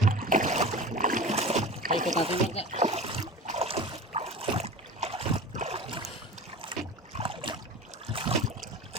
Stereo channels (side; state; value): both; normal; correlation 0.33